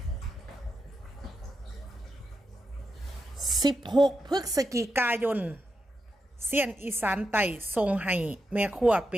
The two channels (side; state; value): both; normal; correlation 0.86